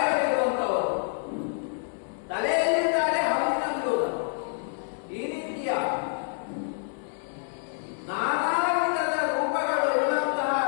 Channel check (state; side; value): silent; right; 60 dB below the other